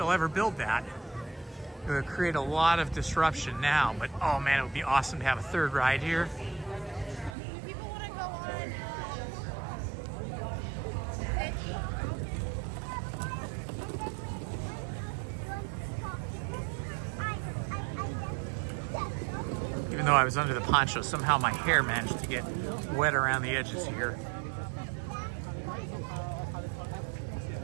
ever build that. It would create a lot of disruption now, but oh man, it would be awesome to have a third ride here. People want to go on. Even though I was under the poncho, somehow my hair managed to get wet around the edges here.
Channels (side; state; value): left; drops out; at 7.4 s